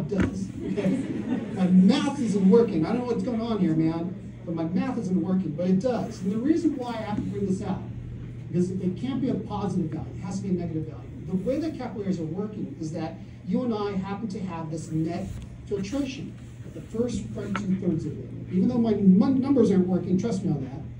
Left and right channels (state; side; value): identical; both; correlation 1.00